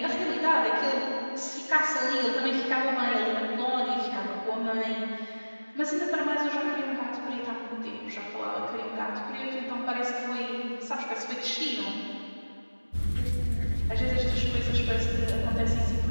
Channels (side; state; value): both; inverted; correlation -1.00